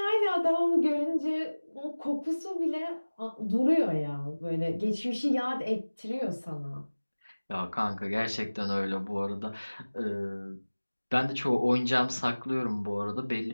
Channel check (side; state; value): both; inverted; correlation -1.00